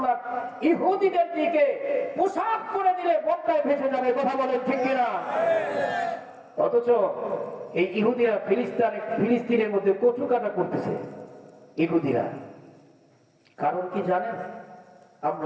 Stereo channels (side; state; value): both; identical; correlation 1.00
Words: ইহুদিদের দিকে পোশাক করে দিলে বন্যায় ভেসে যাবে। কথা বলেন ঠিক কিনা? অথচ এই ইহুদিরা ফিলিস্তিনের মধ্যে কচু কাটা করতেছে। ইহুদিরা কারণ কি জানেন?